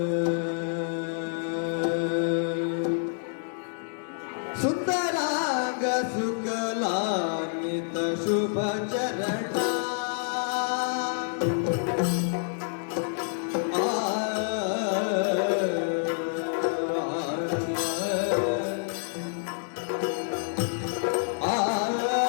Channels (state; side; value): silent; right; digital silence